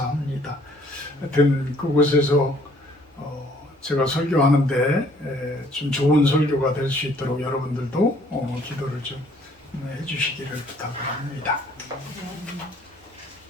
하여튼 그곳에서 제가 설교하는데 좀 좋은 설교가 될 수 있도록 여러분들도 기도를 좀 해주시기를 부탁을 합니다.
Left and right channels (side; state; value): both; normal; correlation 0.61